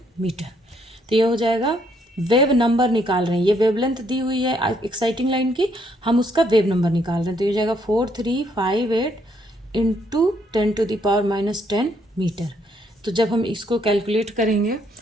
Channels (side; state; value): both; normal; correlation 0.71